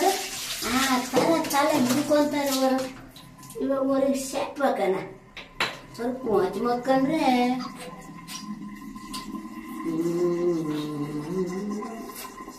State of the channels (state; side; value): identical; both; correlation 1.00